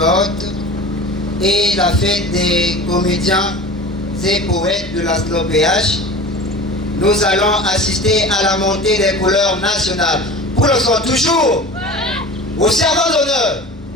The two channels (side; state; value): both; normal; correlation 0.37